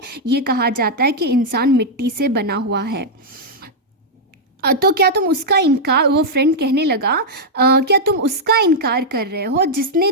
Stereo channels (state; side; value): normal; both; correlation -0.04